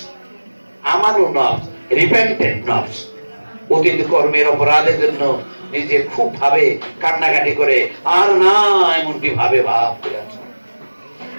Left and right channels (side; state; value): both; inverted; correlation -1.00